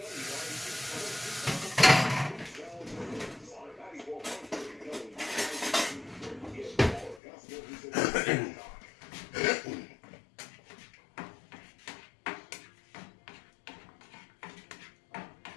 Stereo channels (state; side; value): drops out; right; at 7.2 s